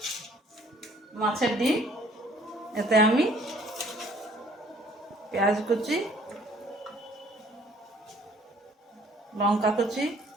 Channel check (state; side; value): normal; both; correlation 0.58